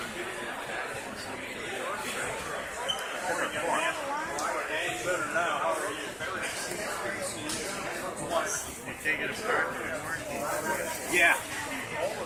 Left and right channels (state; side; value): identical; both; correlation 1.00